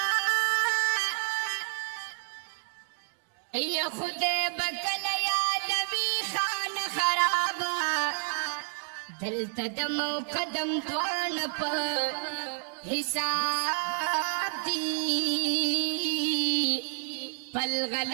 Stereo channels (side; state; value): left; silent; 58 dB below the other